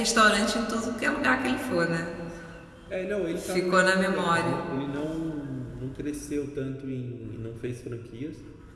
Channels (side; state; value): both; identical; correlation 1.00